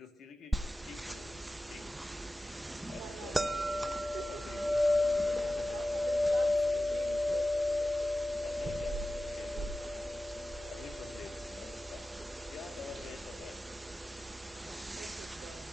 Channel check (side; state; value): both; normal; correlation 0.95